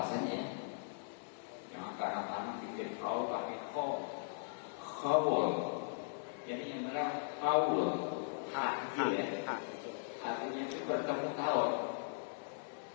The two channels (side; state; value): right; silent; digital silence